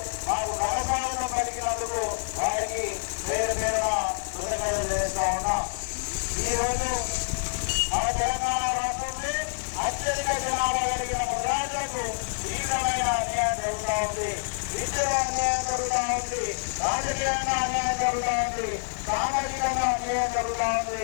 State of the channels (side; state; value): right; silent; digital silence